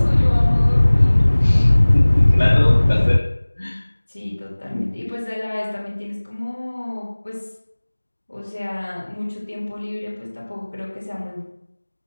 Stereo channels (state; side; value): inverted; both; correlation -1.00